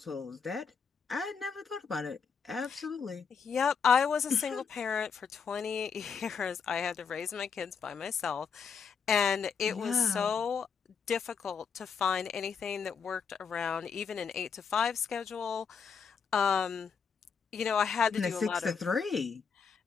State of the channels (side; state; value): right; quieter; 6.2 dB